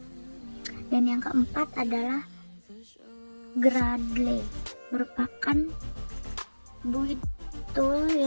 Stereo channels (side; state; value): both; inverted; correlation -1.00